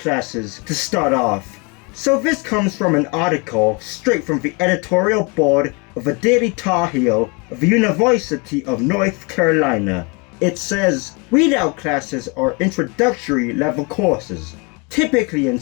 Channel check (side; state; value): right; quieter; 30.8 dB